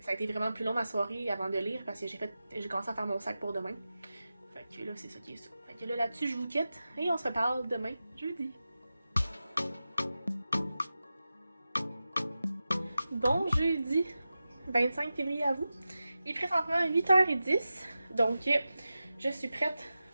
a été vraiment plus long ma soirée avant de lire parce que j'ai commencé à faire mon sac pour demain. Fait que là, c'est ça qui est ça. Fait que là-dessus, je vous quitte et on se reparle demain, jeudi. Bon jeudi 25 février à vous. Il est présentement 8h10, donc je suis prête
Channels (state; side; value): inverted; both; correlation -0.93